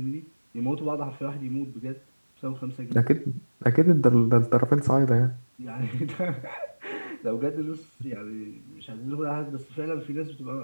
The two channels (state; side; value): inverted; both; correlation -1.00